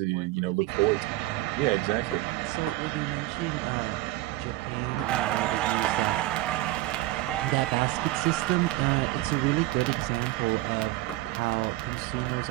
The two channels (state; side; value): quieter; left; 17.2 dB